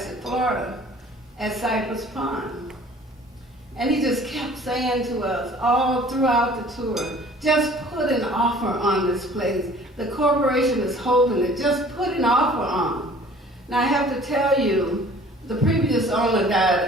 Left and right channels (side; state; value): both; normal; correlation 0.50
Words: Florida, at Cypress Pond. And he just kept saying to us all throughout the tour, "Just put an offer on this place. The corporation is holding it. Just put an offer on." Now I have to tell you, the previous owner